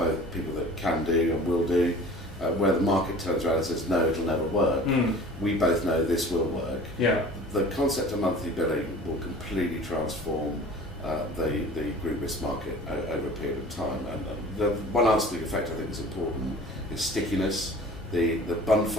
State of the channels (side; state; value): both; normal; correlation 0.44